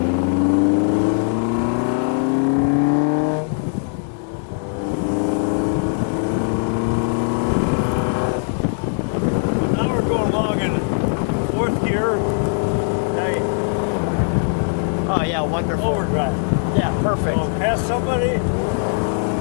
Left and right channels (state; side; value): silent; right; digital silence